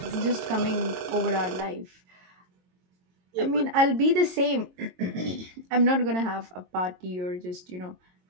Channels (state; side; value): late; left; 22 ms